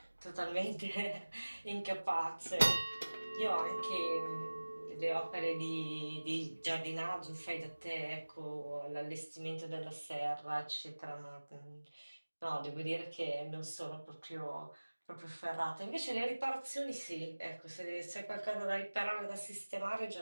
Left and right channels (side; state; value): both; inverted; correlation -1.00